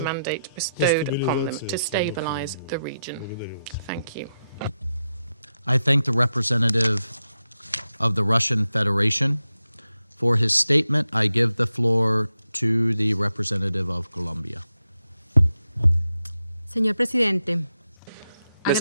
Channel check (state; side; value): inverted; both; correlation -0.87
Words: mandate bestowed upon them to stabilise the region. Thank you. I thank the representative of the Russian Federation. For his statement, I give the floor to the representative of Colombia. Señor Presidente, Mr.